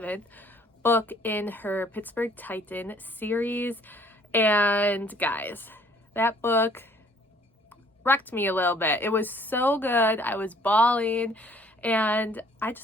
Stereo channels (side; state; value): both; normal; correlation 0.59